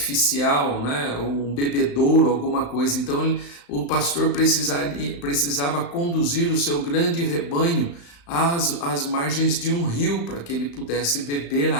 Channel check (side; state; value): right; late; 35 ms